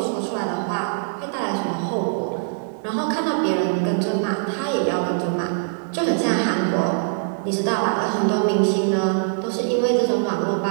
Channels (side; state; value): left; silent; 64 dB below the other